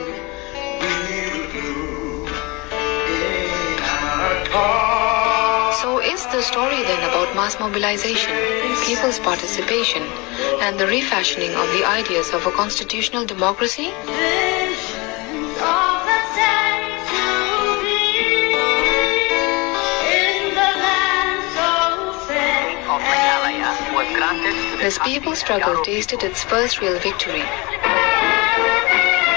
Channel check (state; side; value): quieter; right; 26.1 dB